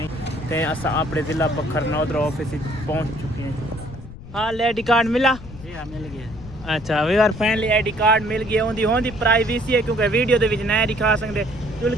ते असा अपने जिला बखर नादरा ऑफिस पहुंच चुके हैं। हाँ आईडी कार्ड मिला? जी हाँ मिल गया। अच्छा we are finally ID card मिल गया। होंदी होंदी प्राइवेसी है क्योंकि वीडियो दे विच नहीं दिखा सकते। चुल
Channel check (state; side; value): noise; left; rumble, 15 dB below the sound